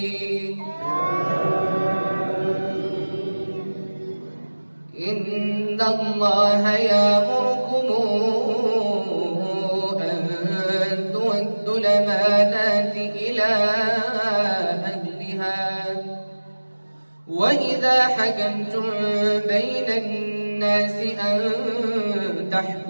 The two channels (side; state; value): both; inverted; correlation -1.00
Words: إن الله يأمركم أن تؤدوا الأمانات إلى أهلها وإذا حكمتم بين الناس أن